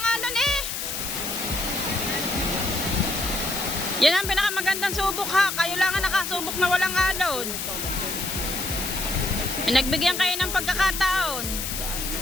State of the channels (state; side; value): noise; left; hiss, 4 dB below the sound